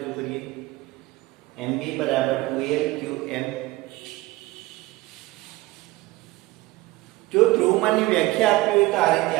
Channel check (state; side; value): quieter; left; 19.8 dB